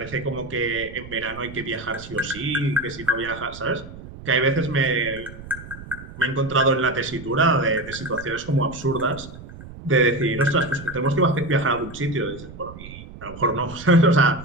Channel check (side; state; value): right; noise; rumble, 15 dB below the sound